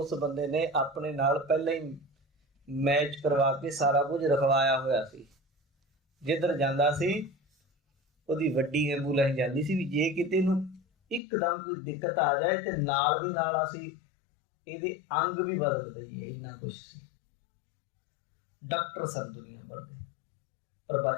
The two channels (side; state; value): right; drops out; at 11.2 s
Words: ਬੰਦੇ ਨੇ ਆਪਣੇ ਨਾਲ ਪਹਿਲਾਂ ਹੀ ਮੈਚ ਕਰਵਾ ਕੇ ਸਾਰਾ ਕੁਝ ਰਖਵਾਇਆ ਹੋਇਆ ਸੀ। ਜਿੱਧਰ ਜਾਂਦਾ ਸੀ ਉਹਦੀ ਵੱਡੀ ਐਂਬੂਲੈਂਸ ਜਾਂਦੀ ਸੀ, ਵੀ ਜੇ ਕਿਤੇ ਨੂੰ ਇੱਕਦਮ ਕੋਈ ਦਿੱਕਤ ਆ ਜਾਏ ਤੇ ਨਾਲ ਦੀ ਨਾਲ ਅਸੀਂ ਇਹਦੇ ਅੰਗ ਵੀ ਬਦਲ ਦਈਏ, ਇੰਨਾ ਕੁਛ ਸੀ। ਡਾਕਟਰ ਸਨ ਦੁਨੀਆ ਭਰ ਦੇ, ਪਰ